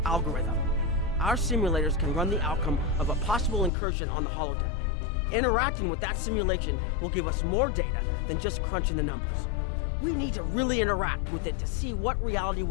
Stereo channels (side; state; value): right; drops out; at 3.7 s